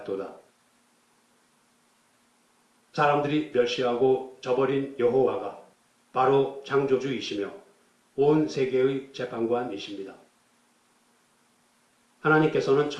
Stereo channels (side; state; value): both; identical; correlation 1.00